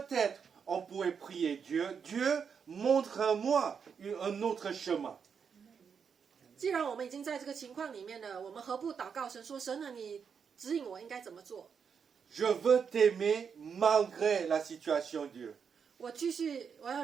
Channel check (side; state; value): left; quieter; 6.6 dB